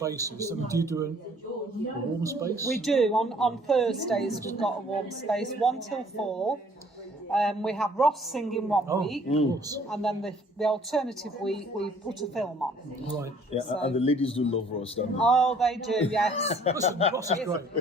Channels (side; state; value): both; normal; correlation 0.58